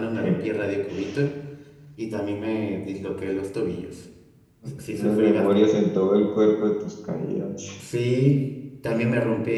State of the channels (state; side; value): identical; both; correlation 1.00